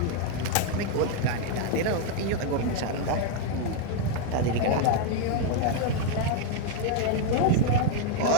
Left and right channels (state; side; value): different; both; correlation 0.00